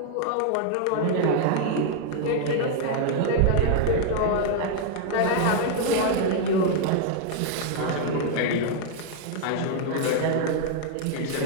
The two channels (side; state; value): both; different; correlation 0.00